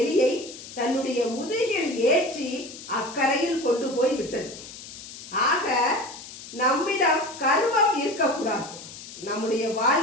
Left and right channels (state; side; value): noise; left; hiss, 14 dB below the sound